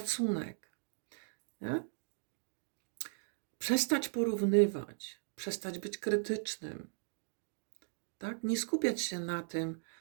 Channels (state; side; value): silent; left; digital silence